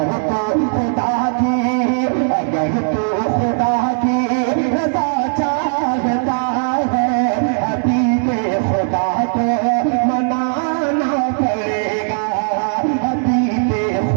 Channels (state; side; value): silent; left; digital silence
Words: तू खुदा की, अगर तू खुदा की रजा चाहता है, हबीब खुदा को मनाना पड़ेगा, हबीब